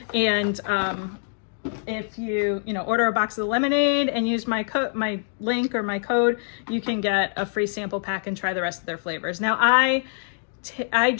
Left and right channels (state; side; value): silent; right; digital silence